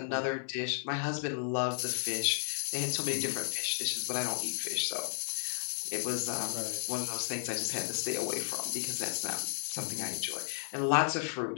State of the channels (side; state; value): right; silent; 55 dB below the other